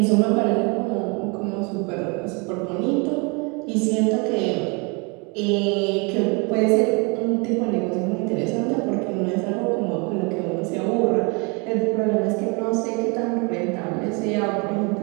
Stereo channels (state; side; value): quieter; left; 31.3 dB